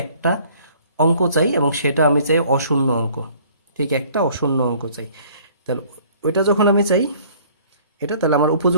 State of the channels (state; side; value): inverted; both; correlation -0.56